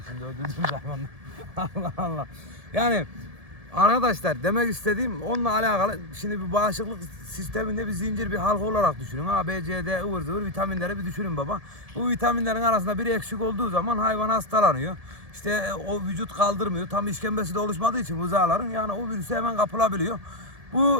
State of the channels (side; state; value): left; late; 1.7 ms